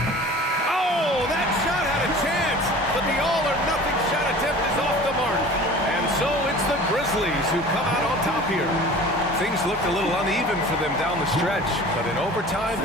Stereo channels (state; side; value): normal; both; correlation 0.42